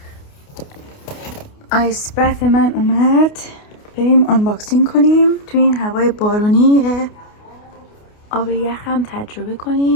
آیس برف من اومد، بریم آنباکسینگ کنیم. تو این هوای بارونی آب یخم تجربه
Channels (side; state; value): right; late; 28 ms